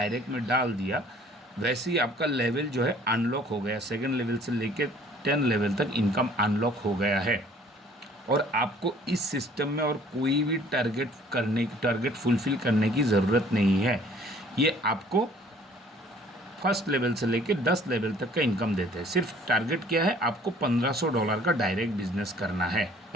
में डाल दिया, वैसे ही आपका लेवल जो है अनलॉक हो गया। 2nd लेवल से लेके 10 लेवल तक इनकम अनलॉक हो गया है। और आपको इस सिस्टम में और कोई भी टारगेट फुलफ़िल करने की ज़रूरत नहीं है। ये आपको फर्स्ट लेवल से लेके 10 लेवल तक का इनकम देते हैं। सिर्फ टारगेट क्या है? आपको $1500 का डायरेक्ट बिजनेस करना है,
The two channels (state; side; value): normal; both; correlation 0.55